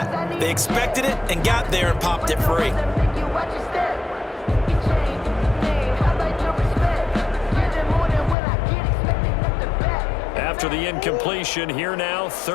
They expected it and got there and popped it free. After the incompletion, here now,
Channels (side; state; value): right; drops out; at 8.3 s